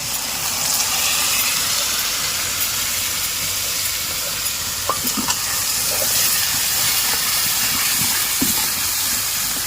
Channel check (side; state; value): both; identical; correlation 1.00